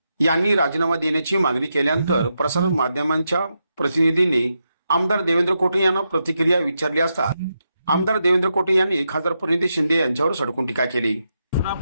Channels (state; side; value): inverted; both; correlation -0.85